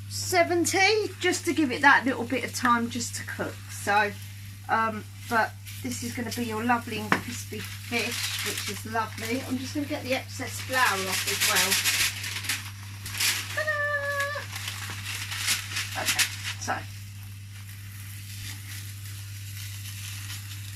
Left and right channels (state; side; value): identical; both; correlation 1.00